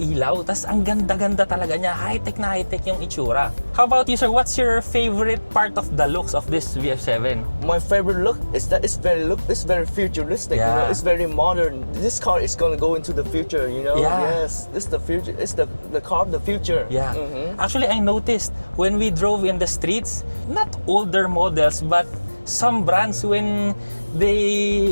Tapos ang ganda-ganda talaga niya. High-tech yung itsura. How about you, sir? What's your favorite part of the looks of this VF7? My favorite look is that it's very futuristic. Yeah. You know, it's very modern. This car is gonna go into the future. You know. Yeah. Yes. This is the future. It's the car of the future. Yeah. Actually, I noticed when we drove in the streets, not older models, but some brands when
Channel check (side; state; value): both; inverted; correlation -1.00